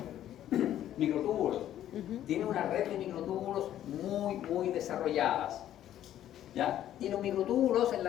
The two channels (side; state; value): right; quieter; 11.8 dB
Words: microtúbulos. Tienen una red de microtúbulos muy desarrolladas. ¿Ya? Y los microtúbulos en